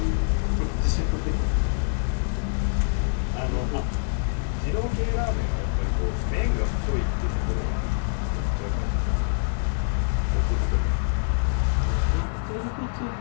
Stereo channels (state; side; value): silent; right; 62 dB below the other